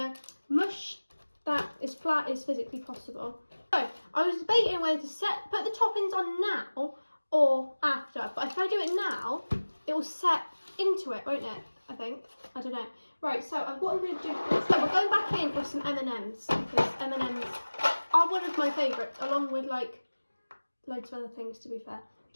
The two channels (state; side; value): inverted; both; correlation -1.00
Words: to mush that as flat as physically possible. So I was debating whether to put the toppings on now or after. But if I do it now, it will set into it, won't it? I think. I don't know. Right, so what I'm going to do is, so we're going back in with some M&Ms, because M&Ms are one of my favourites, along with like loads of other things, to be fair.